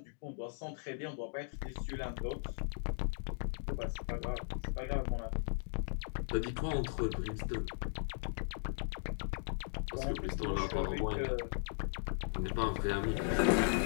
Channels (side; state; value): right; silent; digital silence